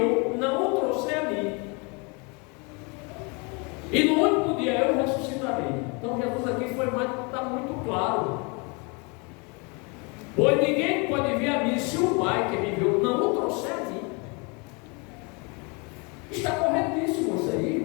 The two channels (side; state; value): right; quieter; 31.1 dB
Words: não o trouxer a mim. E no último dia eu ressuscitarei. Então Jesus aqui está muito claro. Pois ninguém pode vir a mim se o Pai que me enviou não o trouxer a mim. Está corretíssimo isso aí,